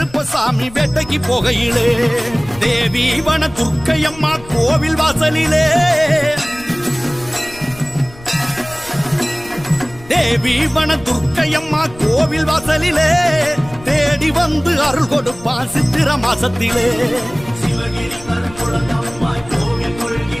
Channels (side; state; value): left; noise; rumble, 19 dB below the sound